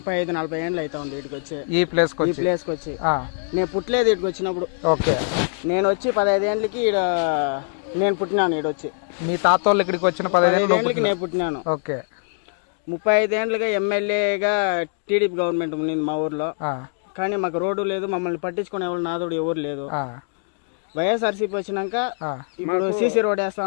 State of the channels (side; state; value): right; silent; digital silence